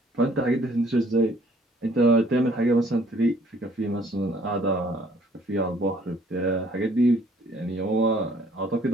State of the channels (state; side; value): normal; both; correlation 0.60